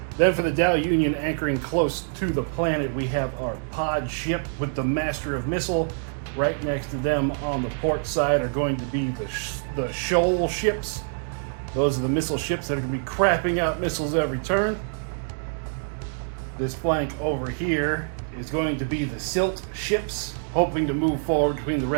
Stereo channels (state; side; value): silent; left; digital silence